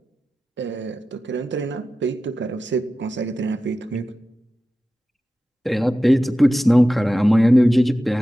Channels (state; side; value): normal; both; correlation 0.94